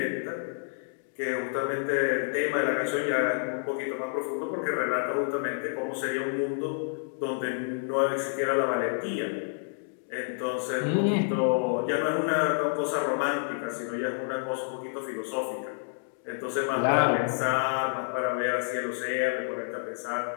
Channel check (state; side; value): silent; right; digital silence